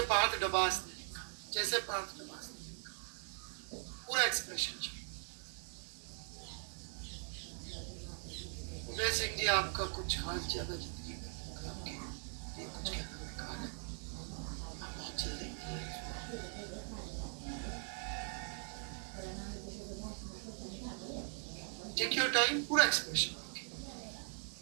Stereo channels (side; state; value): left; silent; 50 dB below the other